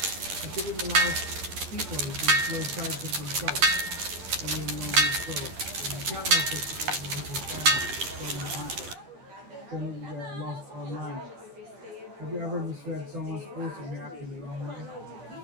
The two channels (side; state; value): left; late; 11 ms